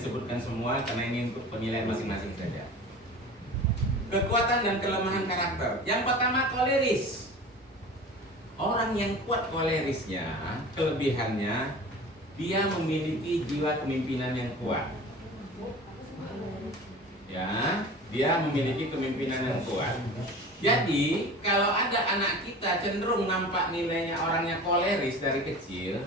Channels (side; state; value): both; normal; correlation 0.37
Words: semua karena ini untuk penilaian masing-masing saja. Kekuatan dan kelemahan karakter. Yang pertama koleris. Orang yang kuat kolerisnya, kelebihannya dia memiliki jiwa kepemimpinan yang kuat. Ya, dia memiliki kepemimpinan yang kuat. Jadi, kalau ada anak kita cenderung nampak nilainya orangnya koleris dari kecil,